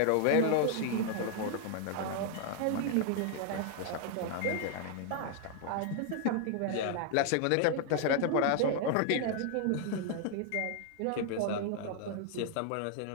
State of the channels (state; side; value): different; both; correlation 0.00